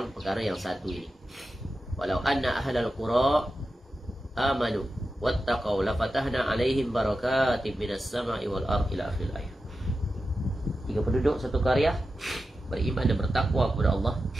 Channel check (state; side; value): normal; both; correlation 0.91